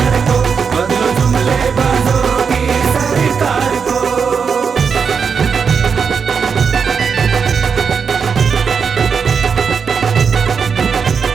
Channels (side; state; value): left; quieter; 6.1 dB